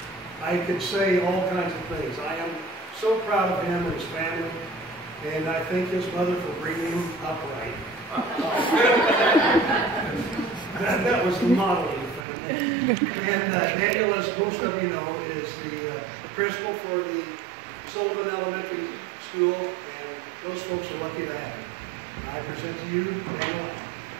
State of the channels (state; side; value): drops out; left; at 12.2 s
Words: I could say all kinds of things. I am so proud of him and his family, and I thank his mother for bringing him up right. That was the model of the family. And Daniel, as most of you know, is the principal for the Sullivan Elementary School, and those folks are lucky to have him. I present to you Daniel.